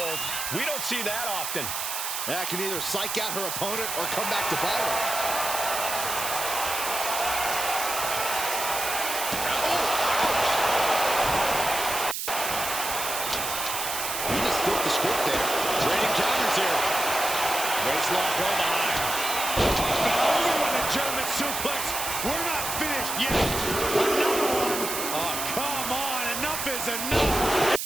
We don't see that often. That can either psych out her opponent or come back to bite her. Waistlock go behind. Over with a German suplex. We're not finished yet. Another one. Oh, come on. Enough is enough.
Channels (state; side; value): noise; right; hiss, 3 dB below the sound